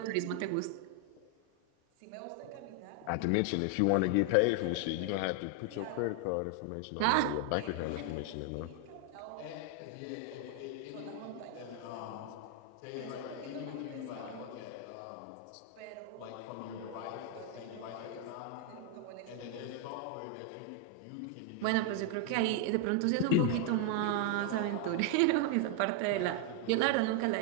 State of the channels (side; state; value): both; different; correlation 0.00